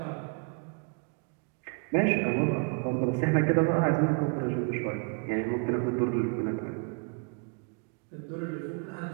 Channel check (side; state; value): left; quieter; 36.9 dB